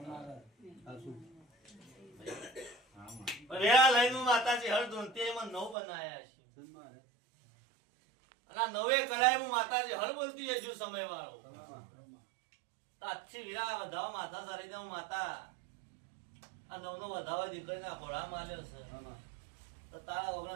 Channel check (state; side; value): drops out; left; at 5.8 s